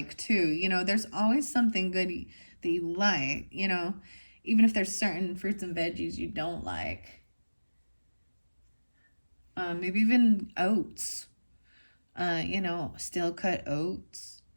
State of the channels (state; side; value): inverted; both; correlation -1.00